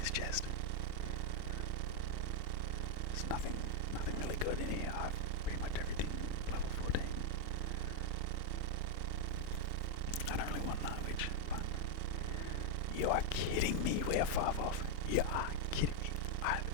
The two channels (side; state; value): both; different; correlation 0.00